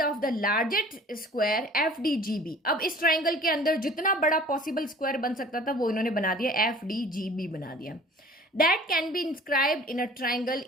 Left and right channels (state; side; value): normal; both; correlation 0.47